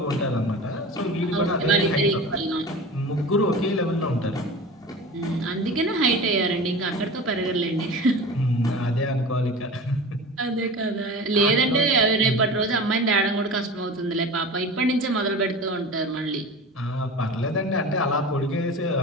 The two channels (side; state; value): both; normal; correlation 0.33